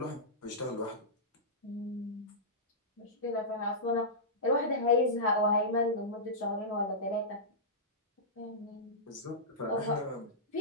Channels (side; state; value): both; normal; correlation -0.15